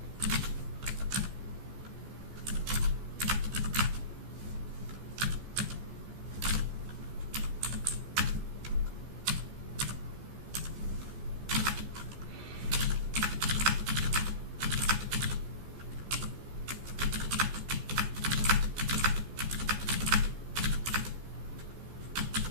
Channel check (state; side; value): late; left; 14 ms